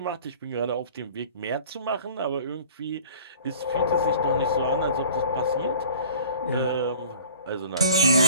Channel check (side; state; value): both; inverted; correlation -0.44